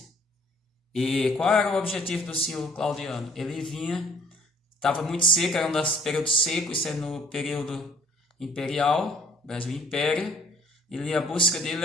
E qual era o objetivo do senhor Claudiano? Ele estava muito seco, era um dos períodos secos, isso é no período imperial, Brasil Império. A busca dele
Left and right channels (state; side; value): normal; both; correlation 0.57